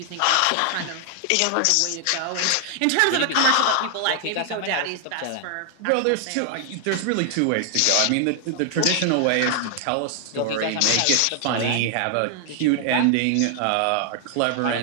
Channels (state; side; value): different; both; correlation 0.00